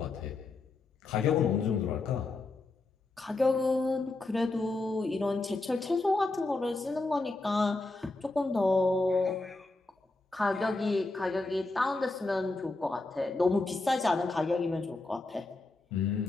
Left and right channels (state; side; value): quieter; right; 3.2 dB